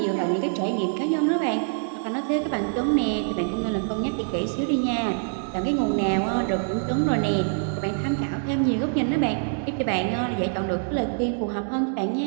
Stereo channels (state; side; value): silent; left; digital silence